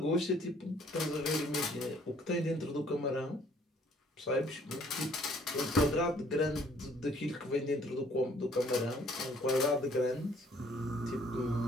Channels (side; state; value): both; normal; correlation 0.60